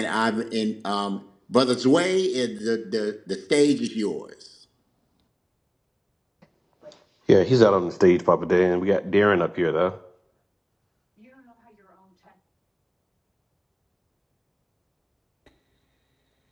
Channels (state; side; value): identical; both; correlation 1.00